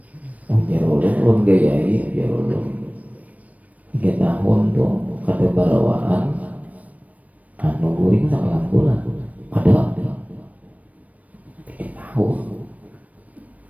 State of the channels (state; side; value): late; left; 0.070 ms